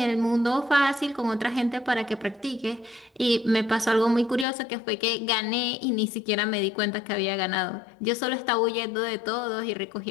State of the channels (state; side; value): drops out; right; at 4.5 s